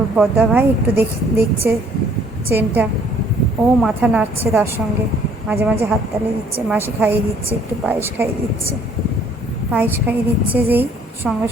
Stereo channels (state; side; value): normal; both; correlation 0.60